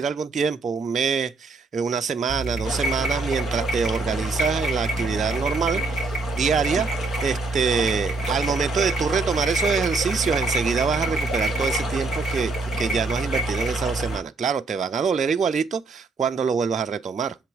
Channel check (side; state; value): left; quieter; 3.9 dB